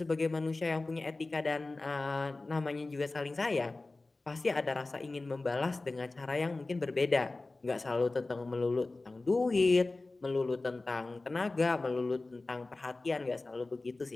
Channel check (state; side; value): quieter; right; 3.2 dB